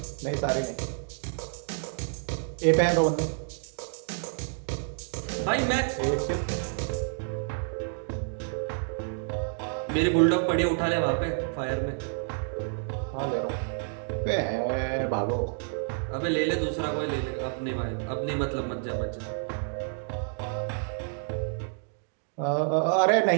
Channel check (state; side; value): silent; left; 59 dB below the other